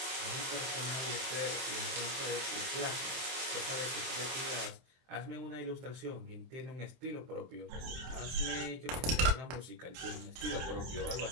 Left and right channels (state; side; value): late; left; 23 ms